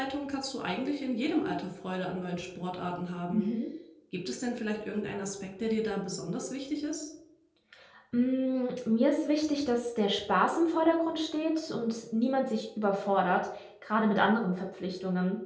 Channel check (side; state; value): both; identical; correlation 1.00